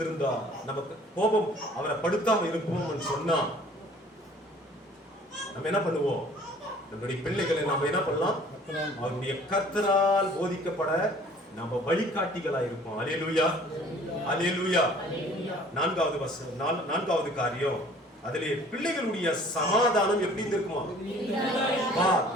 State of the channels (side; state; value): both; normal; correlation 0.52